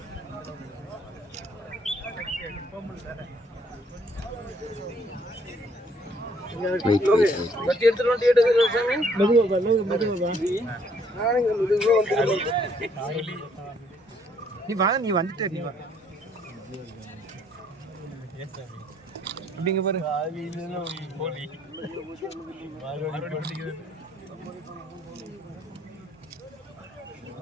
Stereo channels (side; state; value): both; normal; correlation 0.65